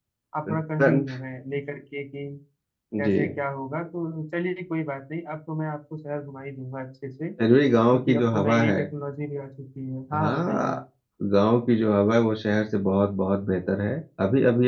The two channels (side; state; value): both; identical; correlation 1.00